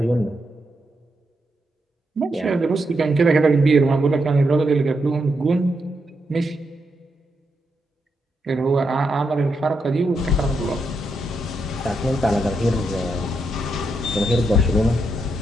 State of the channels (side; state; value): both; normal; correlation 0.82